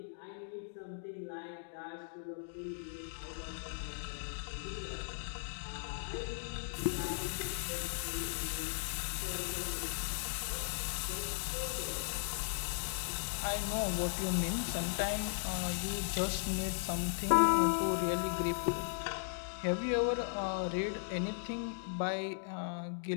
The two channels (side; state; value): right; silent; digital silence